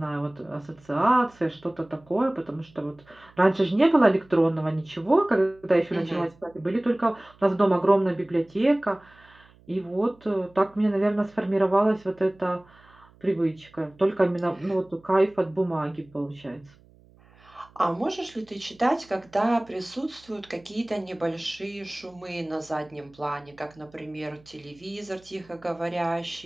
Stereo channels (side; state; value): right; noise; hum, 28 dB below the sound